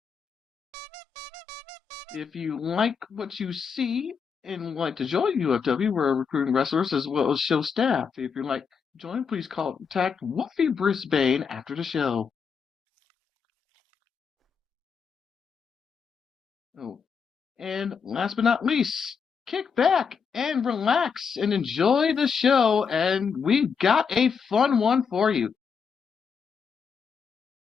If you like what you see and would like to join UFW, we're recruiting wrestlers as well as show staff. If you'd like to join, please contact Wolfie Brisbane after the show. Oh, and last but not least, kick back and relax and enjoy the show, and we've got a fun one for you.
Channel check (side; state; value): right; quieter; 6.2 dB